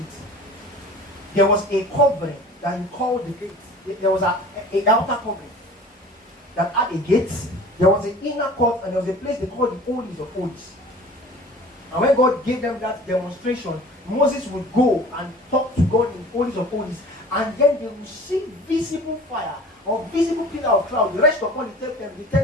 There was a covering that He called the gates. There was a outer covering that had a gate. There was an inner court and there was a place they called the Holies of Holies. And when God gave them that demonstration, Moses would go and talk to God in Holies of Holies, and then they would see visible fire or visible pillar of cloud rest upon the tent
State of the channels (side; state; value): both; normal; correlation 0.43